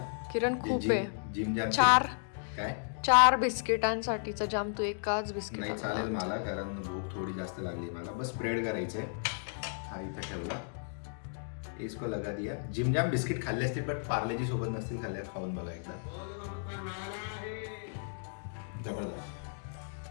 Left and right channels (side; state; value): right; silent; digital silence